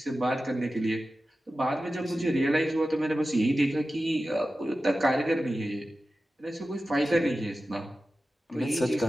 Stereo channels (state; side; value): normal; both; correlation 0.94